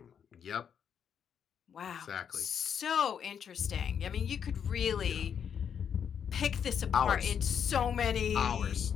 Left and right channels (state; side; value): quieter; right; 7.9 dB